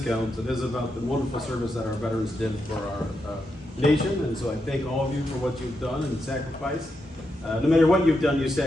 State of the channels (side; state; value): both; normal; correlation 0.84